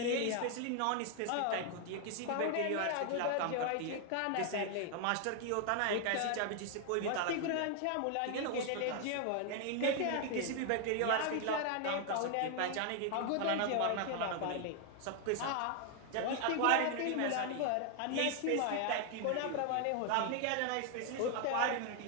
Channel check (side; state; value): both; different; correlation 0.00